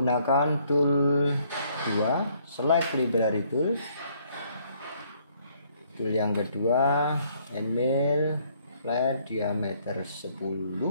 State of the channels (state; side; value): inverted; both; correlation -0.65